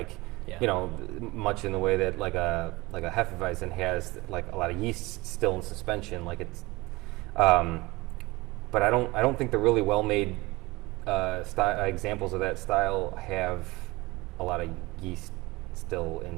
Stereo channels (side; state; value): left; quieter; 22.1 dB